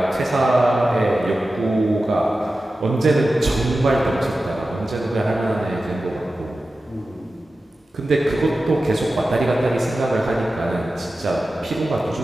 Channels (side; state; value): both; normal; correlation 0.94